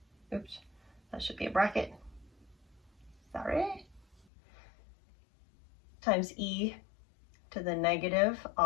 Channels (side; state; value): right; drops out; at 4.2 s